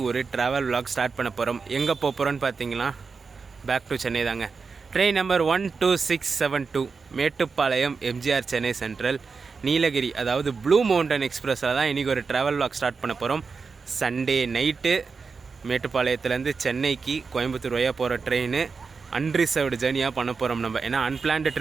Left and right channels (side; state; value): left; quieter; 4.9 dB